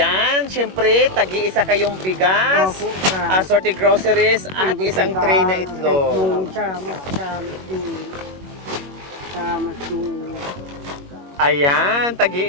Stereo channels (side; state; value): left; late; 21 ms